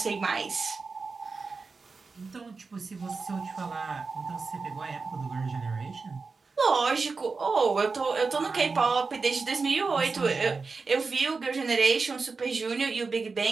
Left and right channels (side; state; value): left; quieter; 4.4 dB